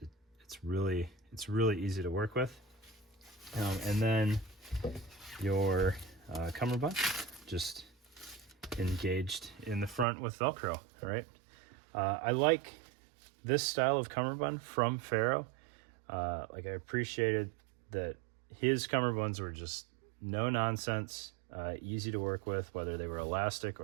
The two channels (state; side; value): drops out; left; at 10.1 s